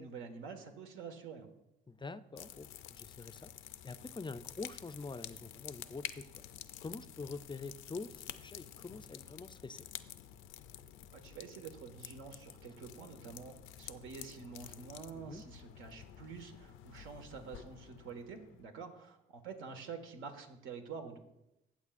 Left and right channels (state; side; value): normal; both; correlation 0.38